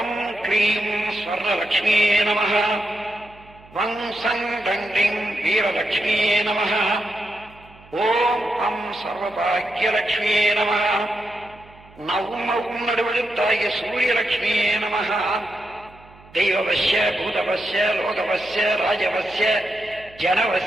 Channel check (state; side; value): noise; right; hum, 24 dB below the sound